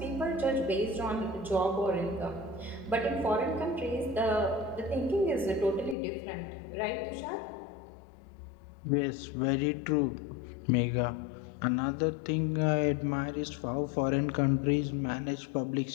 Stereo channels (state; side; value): drops out; right; at 6.0 s